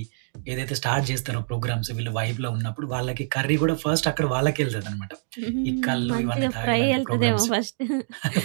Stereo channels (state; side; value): silent; left; digital silence